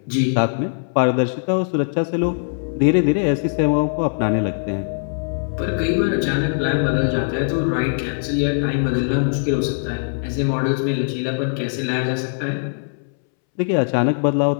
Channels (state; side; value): silent; right; 65 dB below the other